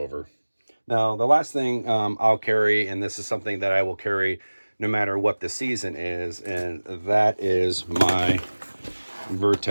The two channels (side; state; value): both; inverted; correlation -1.00